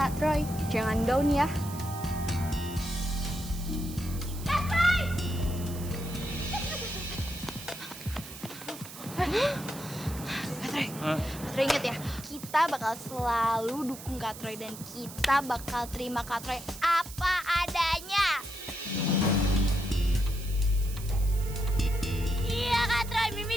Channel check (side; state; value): right; noise; hiss, 14 dB below the sound